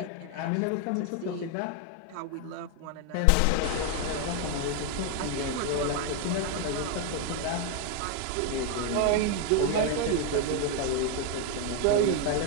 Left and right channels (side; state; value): both; different; correlation 0.01